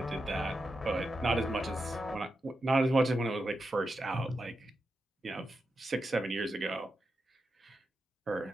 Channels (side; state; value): both; normal; correlation 0.88